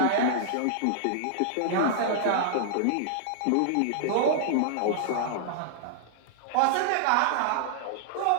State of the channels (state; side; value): different; both; correlation -0.01